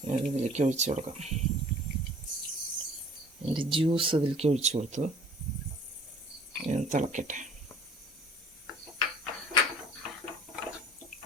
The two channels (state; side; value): normal; both; correlation 0.51